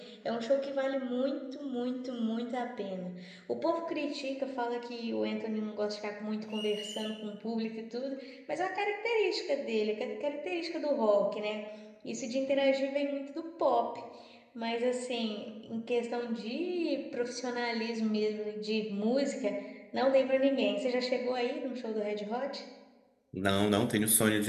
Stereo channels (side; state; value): both; identical; correlation 1.00